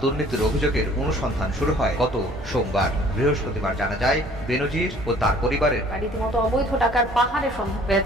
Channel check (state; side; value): normal; both; correlation 0.54